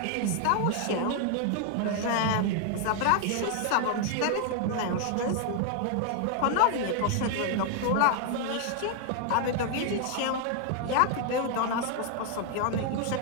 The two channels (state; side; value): different; both; correlation 0.00